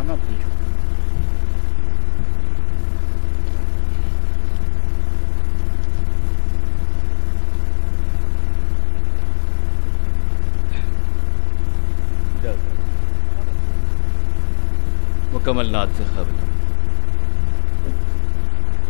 پیش کریں۔ مکمل نعت سے قبل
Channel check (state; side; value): silent; right; 67 dB below the other